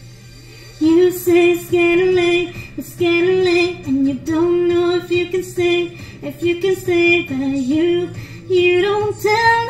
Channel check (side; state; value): both; identical; correlation 1.00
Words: You say it's getting late, and you don't know if you can stay, but you don't tell